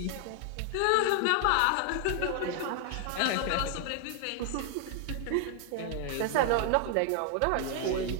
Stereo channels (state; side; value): different; both; correlation 0.00